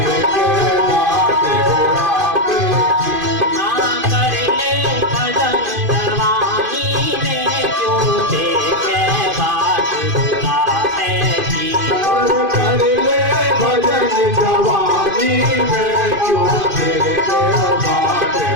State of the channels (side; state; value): left; late; 2.5 ms